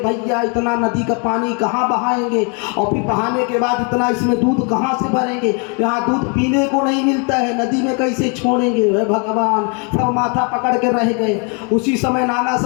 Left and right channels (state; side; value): quieter; right; 36.1 dB